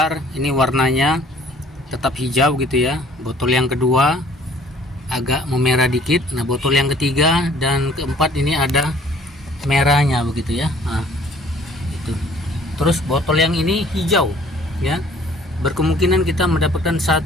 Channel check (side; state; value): both; normal; correlation 0.55